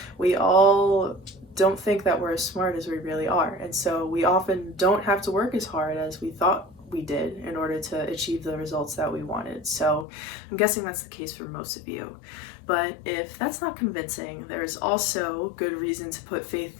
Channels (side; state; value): right; drops out; at 10.1 s